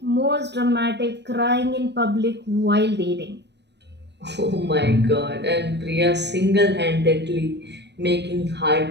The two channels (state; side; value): late; left; 0.50 ms